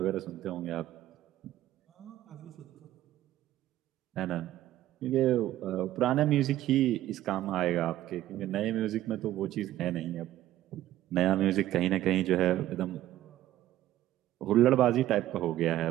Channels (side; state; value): left; quieter; 14.0 dB